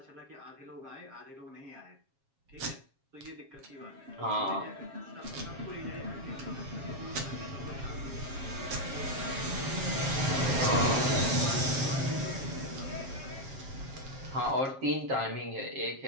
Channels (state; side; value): late; left; 7.4 ms